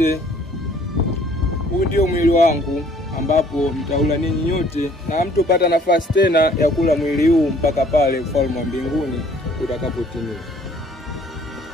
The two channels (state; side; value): normal; both; correlation 0.58